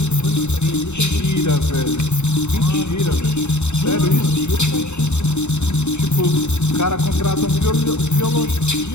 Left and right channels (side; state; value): right; late; 0.82 ms